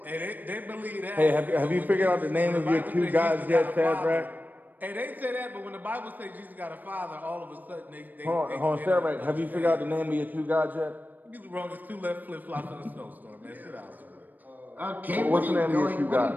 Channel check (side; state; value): left; late; 0.086 ms